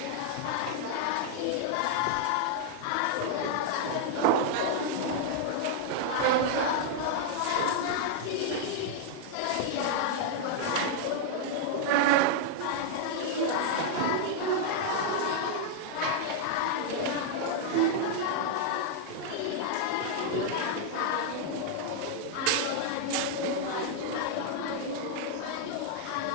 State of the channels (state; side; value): different; both; correlation 0.00